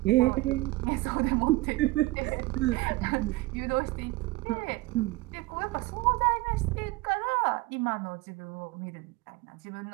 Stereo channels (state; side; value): quieter; left; 20.5 dB